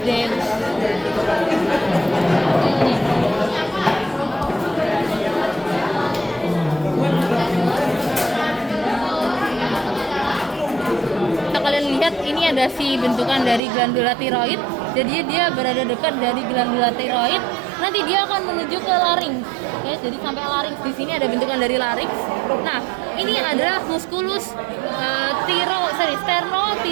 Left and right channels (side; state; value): left; drops out; at 13.6 s